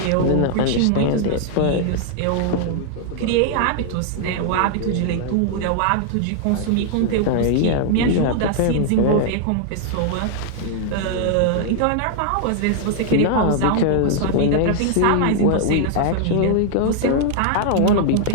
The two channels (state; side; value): different; both; correlation -0.01